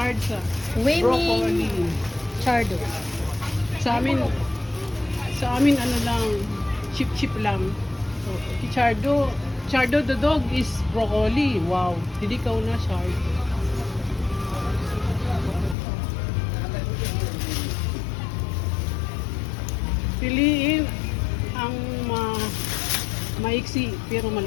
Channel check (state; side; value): drops out; right; at 15.8 s